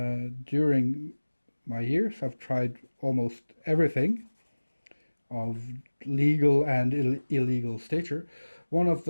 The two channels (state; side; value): inverted; both; correlation -1.00